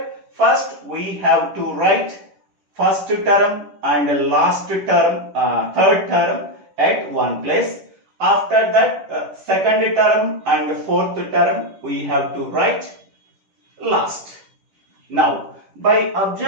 first we have to write first term and last term, third term at one place. After that, second term and fourth term we have to write last. Now, by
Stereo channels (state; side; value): late; left; 10 ms